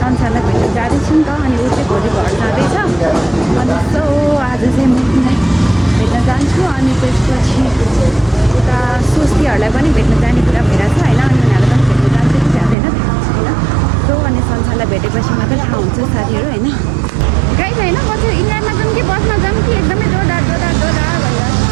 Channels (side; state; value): left; drops out; at 12.8 s